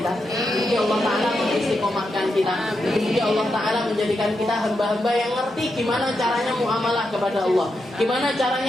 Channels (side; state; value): both; normal; correlation 0.85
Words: mungkin Allah Ta'ala mengistiqomahkan kita, mungkin Allah Ta'ala menjadikan kita hamba-hamba yang ngerti gimana caranya muamalah kepada Allah, gimana